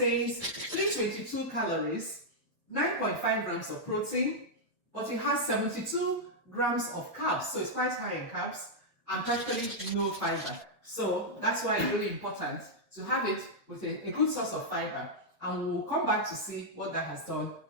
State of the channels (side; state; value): both; normal; correlation -0.05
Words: 322 calories, 9.5 grams of protein, but it has 72 grams of carbs, so it's quite high in carbs, and practically no fiber. So that's why it's really important to have it with a good source of fiber, and we'll come back to see what that has done